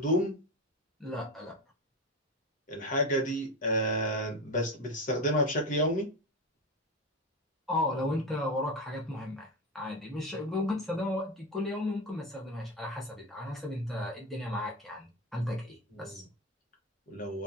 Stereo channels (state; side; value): normal; both; correlation 0.19